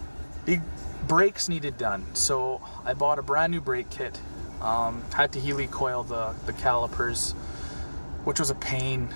brakes needed done. So I bought a brand new brake kit. Had to helicoil the calipers, which was a pain.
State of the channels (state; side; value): inverted; both; correlation -1.00